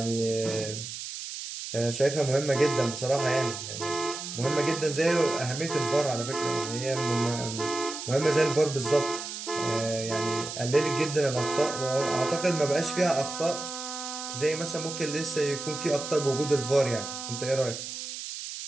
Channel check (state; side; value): noise; right; hiss, 8 dB below the sound